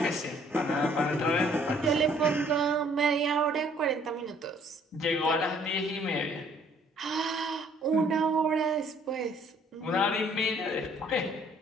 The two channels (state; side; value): normal; both; correlation 0.60